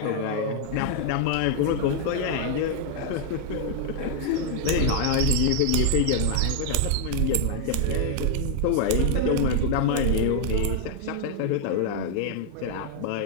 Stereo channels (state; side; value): different; both; correlation 0.00